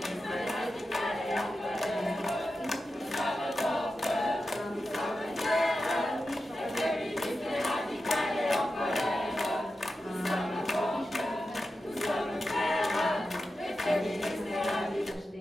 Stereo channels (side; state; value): both; normal; correlation 0.91